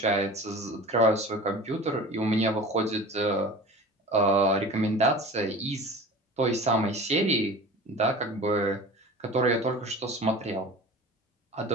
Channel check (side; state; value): both; normal; correlation 0.37